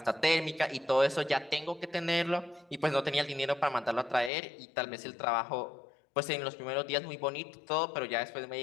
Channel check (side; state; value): right; drops out; at 4.3 s